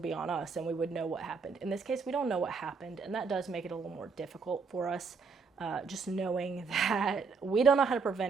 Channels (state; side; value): quieter; left; 5.0 dB